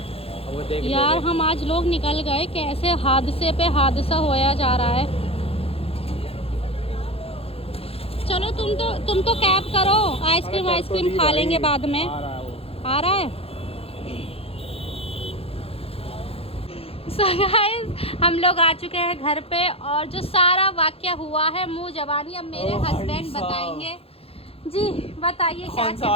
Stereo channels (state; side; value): late; right; 0.28 ms